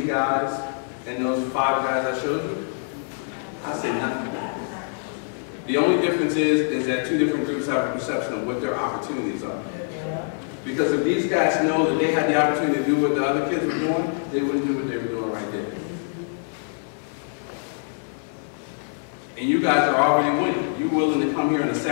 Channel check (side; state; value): right; silent; 62 dB below the other